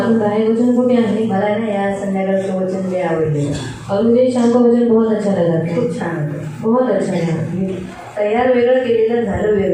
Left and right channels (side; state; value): both; identical; correlation 1.00